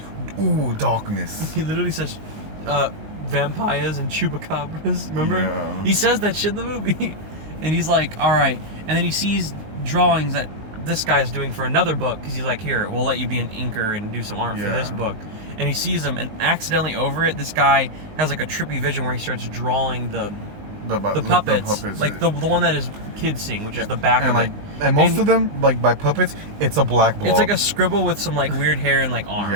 ooh, darkness. He literally says, vampires and chupacabras. Remember? Yeah. He says that shit in the movie. And he's like, alright. And then he sees drawings that this guy's doing for another book, because he's like, here, we'll let you be an inker and do some art for this book. And he sees them, and accidentally over it, this guy has like a trippy vision where he starts drawing the puppets, like the one that his kids sing, which is the back of it. And most of them, like by puppets, it's a black blob. It's like a scribble with some like weird hair and like arms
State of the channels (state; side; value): late; left; 19 ms